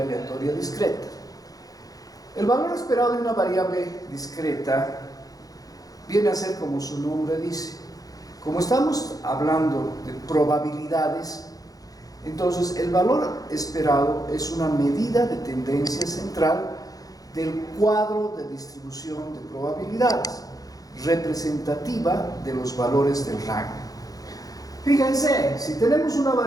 aleatoria discreta. El valor esperado de una variable discreta viene a ser como su nombre dice. Como estamos hablando de probabilidades, entonces el valor esperado es una medida de tendencia central del cuadro de distribución de probabilidades, representativa de los valores del rango. Fíjense, si tenemos una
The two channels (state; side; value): late; right; 0.18 ms